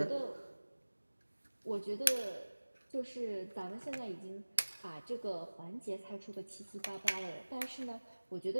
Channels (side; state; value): both; inverted; correlation -1.00